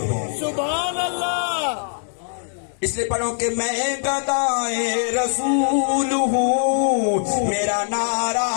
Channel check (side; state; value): right; silent; digital silence